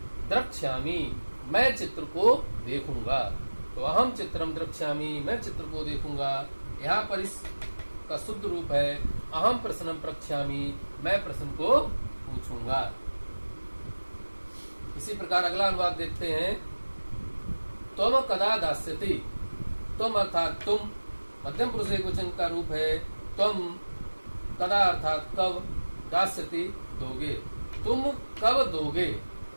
द्रक्ष्यामि, मैं चित्र को देखूंगा। तो अहम चित्रम द्रक्ष्यामि, मैं चित्र को देखूंगा। यहाँ पर इसका शुद्ध रूप है अहम प्रश्नम प्रक्ष्यामि, मैं प्रश्न को पूछूंगा। इसी प्रकार अगला अनुवाद देखते हैं। त्वम कदा दास्यति। त्वम अर्थात तुम, मध्यम पुरुष एकवचन का रूप है। त्वम कदा अर्थात कब, दास्यति दोगे, तुम कब दोगे,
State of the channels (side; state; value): both; inverted; correlation -1.00